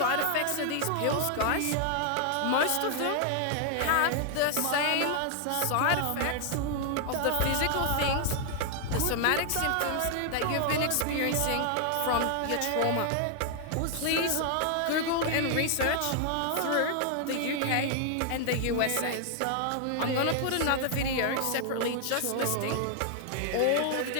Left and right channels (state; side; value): different; both; correlation 0.00